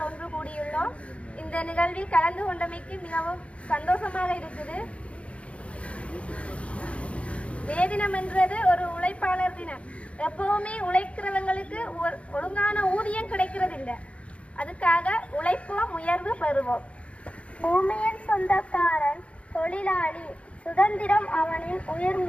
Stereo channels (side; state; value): right; late; 0.062 ms